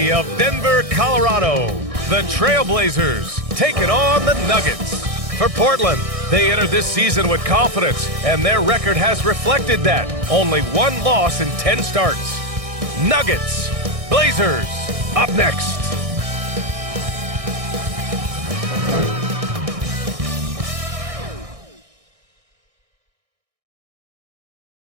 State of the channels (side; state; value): left; late; 1.6 ms